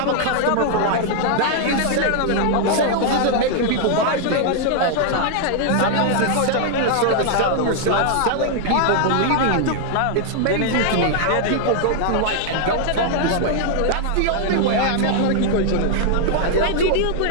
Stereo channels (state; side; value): different; both; correlation 0.00